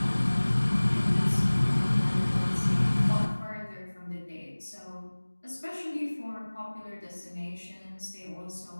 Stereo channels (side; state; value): both; inverted; correlation -1.00